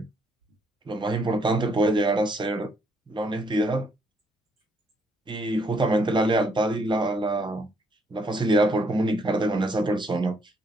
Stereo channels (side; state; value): both; normal; correlation 0.70